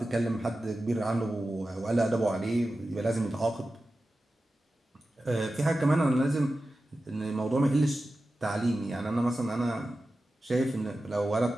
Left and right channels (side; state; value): both; normal; correlation 0.94